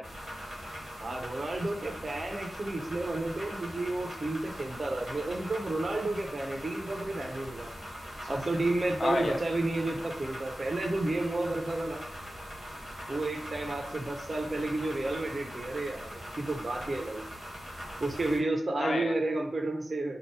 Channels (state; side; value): normal; both; correlation 0.94